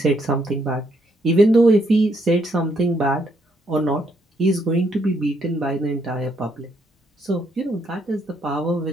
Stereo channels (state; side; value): normal; both; correlation 0.73